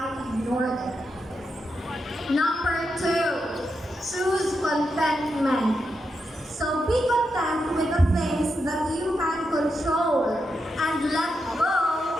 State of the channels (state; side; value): normal; both; correlation 0.85